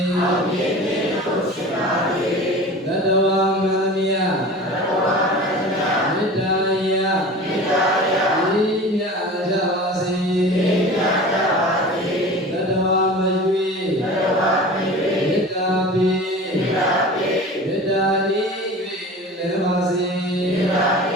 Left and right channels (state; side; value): normal; both; correlation 0.37